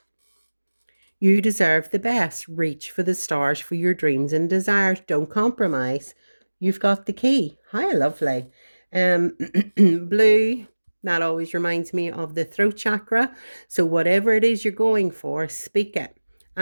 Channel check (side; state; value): both; inverted; correlation -1.00